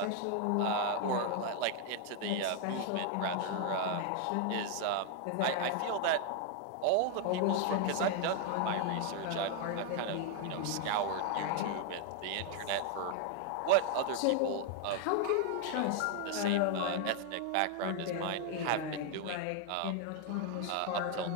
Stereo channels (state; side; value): different; both; correlation 0.00